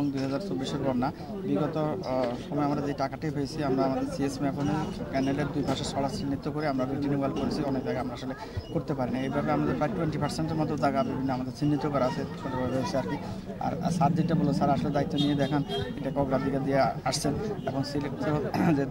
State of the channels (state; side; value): identical; both; correlation 1.00